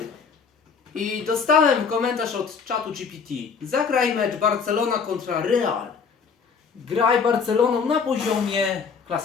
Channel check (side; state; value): right; quieter; 5.9 dB